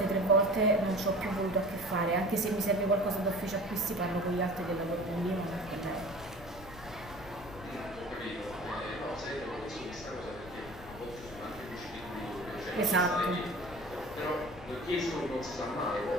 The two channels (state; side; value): noise; left; rumble, 16 dB below the sound